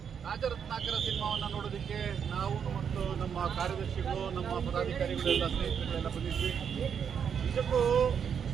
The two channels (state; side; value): quieter; left; 7.5 dB